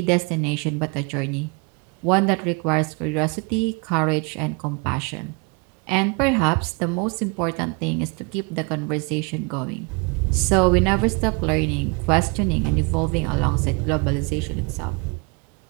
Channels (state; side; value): quieter; left; 30.6 dB